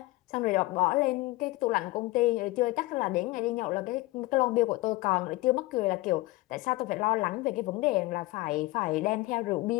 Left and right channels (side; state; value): right; quieter; 20.2 dB